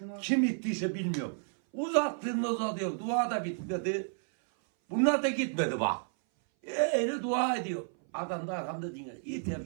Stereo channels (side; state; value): left; silent; 56 dB below the other